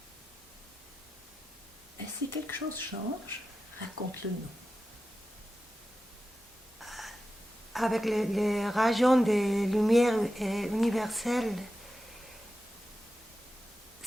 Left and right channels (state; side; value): normal; both; correlation 0.92